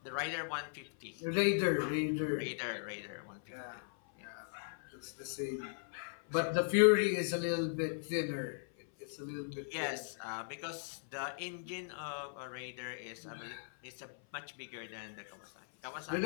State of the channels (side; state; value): right; silent; 52 dB below the other